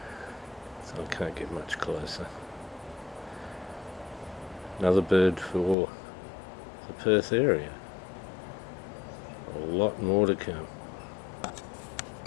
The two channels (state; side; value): drops out; right; at 5.8 s